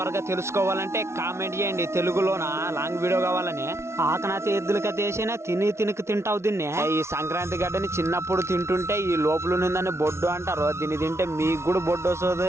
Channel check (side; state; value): left; late; 0.13 ms